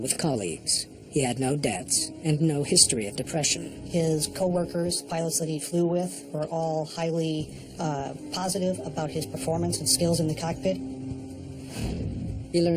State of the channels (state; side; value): identical; both; correlation 1.00